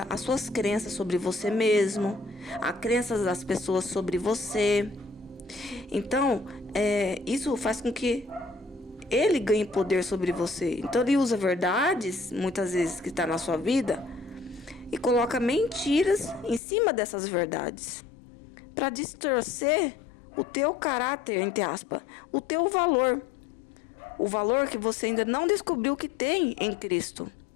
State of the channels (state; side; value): drops out; right; at 16.6 s